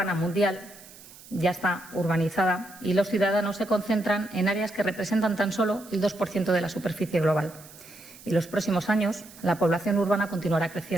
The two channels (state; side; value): noise; right; hiss, 20 dB below the sound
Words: mundial ya está urbanizada y los ciudadanos se concentran en áreas que representan tan solo el 2% de la superficie global. Y en los próximos años la población urbana continuará